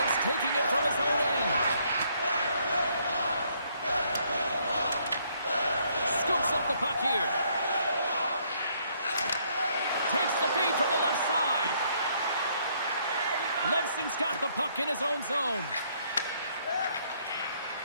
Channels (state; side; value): inverted; both; correlation -0.68